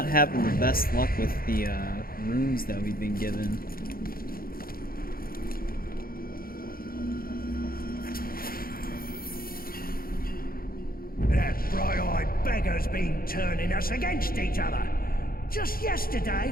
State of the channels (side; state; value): right; late; 0.42 ms